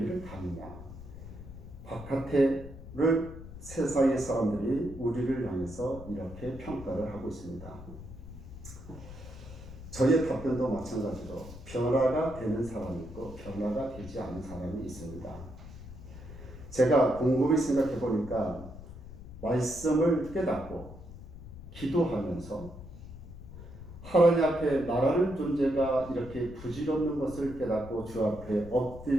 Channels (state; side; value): noise; left; rumble, 14 dB below the sound